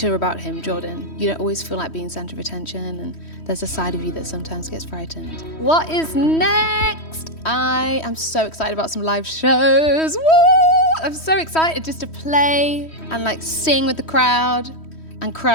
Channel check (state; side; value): late; right; 3.1 ms